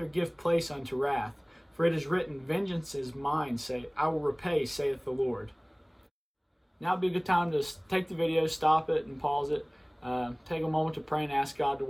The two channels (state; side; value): identical; both; correlation 1.00